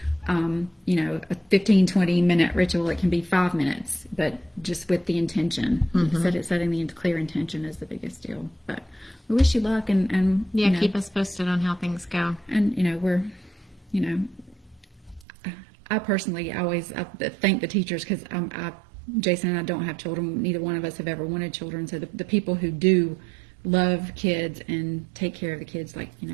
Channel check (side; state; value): left; drops out; at 15.2 s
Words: a 15-20 minute ritual. It can be 5 minutes, but just with the intention. Setting the clear intention is the biggest deal. But we wish you luck, and keep us posted on how things go. And we're, I personally always thank the teachers, because Jason and I don't have children. Neither one of us have ever wanted children. So the people who do love kids and take care of the kids, my